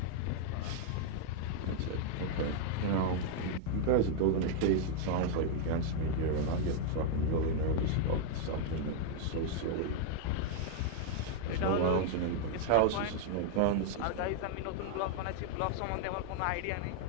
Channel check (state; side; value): different; both; correlation -0.01